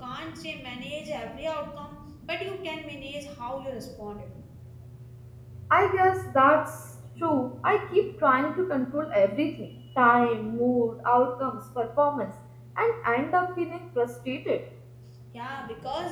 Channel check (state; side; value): identical; both; correlation 1.00